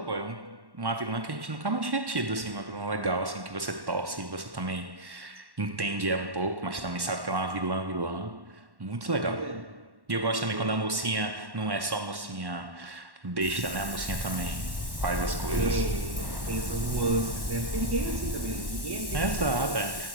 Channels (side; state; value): left; late; 1.1 ms